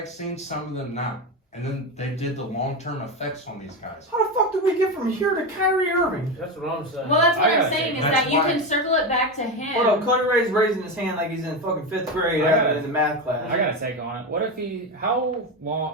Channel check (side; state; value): both; normal; correlation 0.16